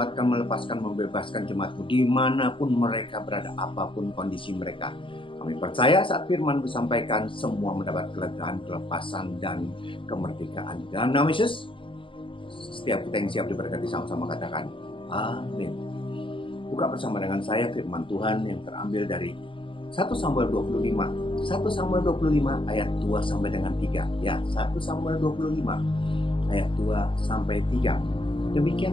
melepaskan, membebaskan jemaat-Mu dimanapun mereka berada, apapun kondisi mereka. Kami percaya saat firman disampaikan, semua mendapat kelegaan, kelepasan, dan kemerdekaan. Dalam nama Yesus, setiap kita yang siap diberkati sama-sama katakan, amin. Buka bersama dengan saya firman Tuhan yang terambil dari 1 Samuel 25. 1 Samuel 25 ayat 2 sampai dengan 3. Ya, 1 Samuel 25 ayat 2 sampai 3.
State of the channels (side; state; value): right; late; 0.25 ms